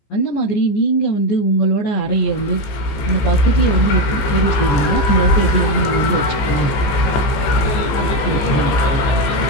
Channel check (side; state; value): right; late; 14 ms